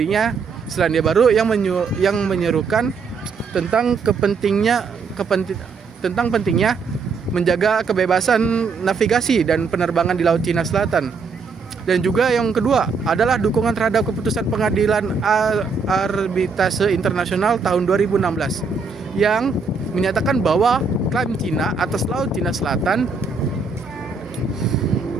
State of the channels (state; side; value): quieter; left; 4.9 dB